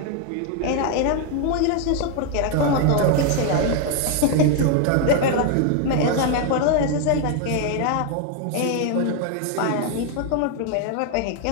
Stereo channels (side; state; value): both; different; correlation 0.00